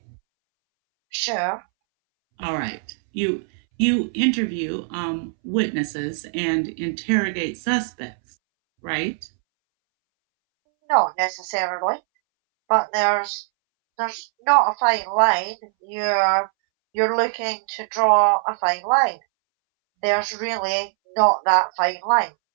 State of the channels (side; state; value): left; silent; 63 dB below the other